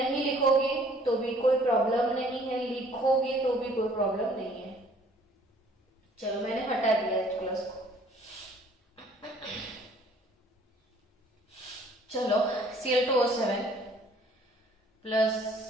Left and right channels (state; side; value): normal; both; correlation 0.57